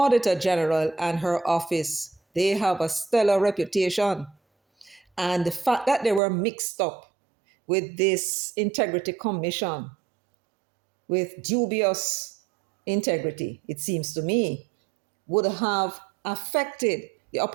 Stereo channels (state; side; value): drops out; left; at 6.2 s